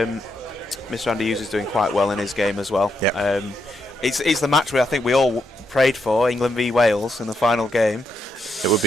Mr. Andy Hughes is doing quite well in his game as well. Yeah. It's the match where I think we all prayed for, England v Wales in the final game. It would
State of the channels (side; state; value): both; normal; correlation 0.80